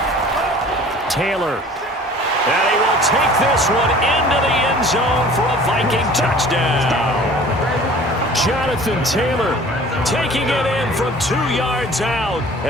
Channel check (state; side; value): normal; both; correlation 0.47